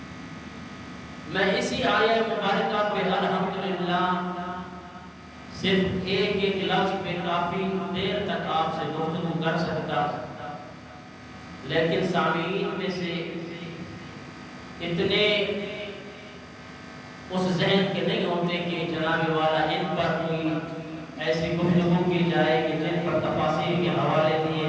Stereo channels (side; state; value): both; identical; correlation 1.00